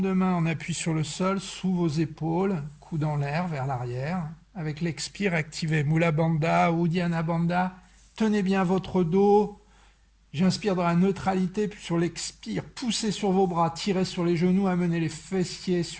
de main en appui sur le sol, sous vos épaules, coude en l'air vers l'arrière. Avec l'expire, activez Mula Bandha, Uddiyana Bandha. Tenez bien votre dos. J'inspire dans la neutralité, puis sur l'expire, poussez sur vos bras, tirez sur les genoux, amenez les fessiers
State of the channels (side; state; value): both; identical; correlation 1.00